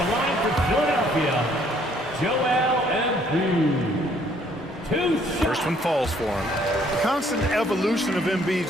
line for Philadelphia, Joel Embiid. First one falls for him. The constant evolution of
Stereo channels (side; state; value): both; normal; correlation 0.63